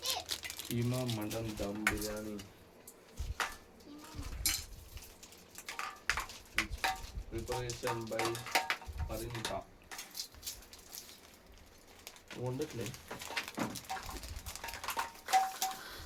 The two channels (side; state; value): both; identical; correlation 1.00